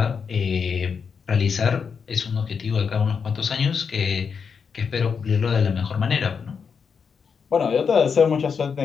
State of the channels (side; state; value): right; quieter; 6.1 dB